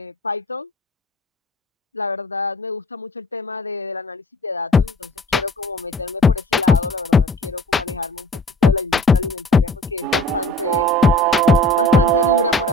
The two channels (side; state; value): both; normal; correlation 0.46